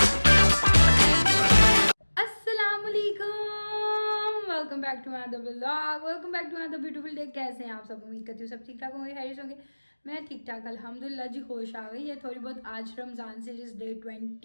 Welcome back to my vlog, welcome back to my beautiful day. कैसे हैं आप सब? उम्मीद करती हूँ सब ठीक ठाक होंगे, हैरिस होंगे। मैं ठीक ठाक अल्हम्दुलिल्लाह जी। होश आ गई है थोड़ी बहुत। आज रमज़ान से जिस डे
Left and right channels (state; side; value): inverted; both; correlation -1.00